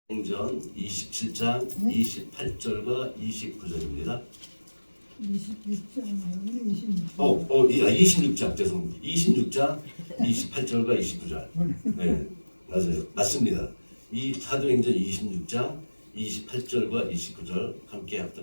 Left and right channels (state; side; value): inverted; both; correlation -1.00